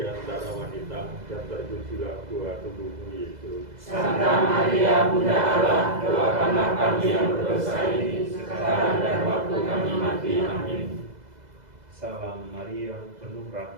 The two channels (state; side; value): late; left; 2.0 ms